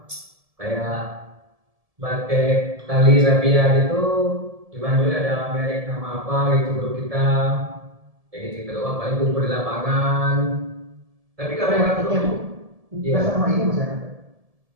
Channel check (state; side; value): late; left; 1.7 ms